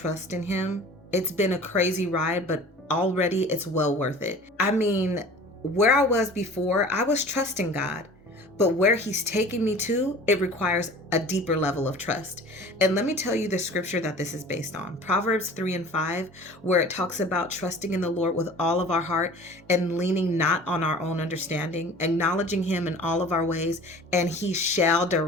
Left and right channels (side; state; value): both; normal; correlation 0.43